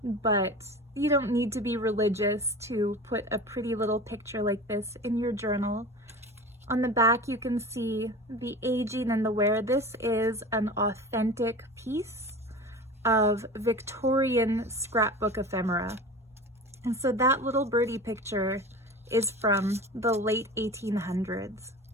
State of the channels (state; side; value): normal; both; correlation 0.34